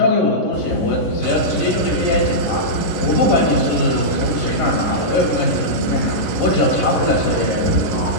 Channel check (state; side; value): late; right; 10 ms